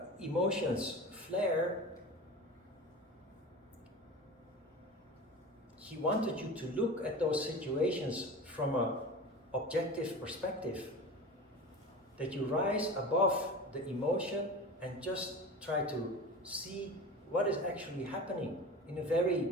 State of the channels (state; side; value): normal; both; correlation 0.33